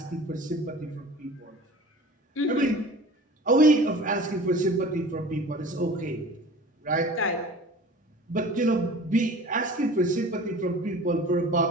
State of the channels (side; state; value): both; normal; correlation 0.41